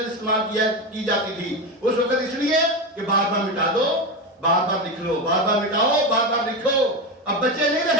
استعمال کی جاتی تھی اس وقت، اس لیے کہ بار بار مٹا دو، بار بار لکھ لو، بار بار مٹاؤ، بار بار لکھو. اب بچے نہیں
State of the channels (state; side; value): normal; both; correlation 0.17